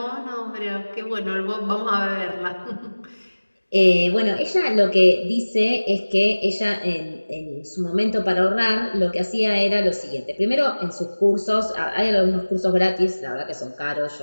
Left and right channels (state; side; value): inverted; both; correlation -1.00